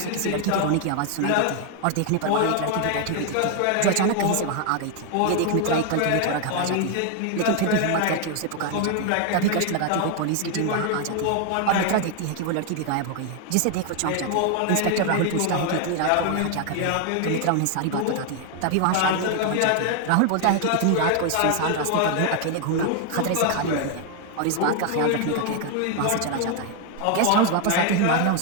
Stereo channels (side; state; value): both; different; correlation 0.00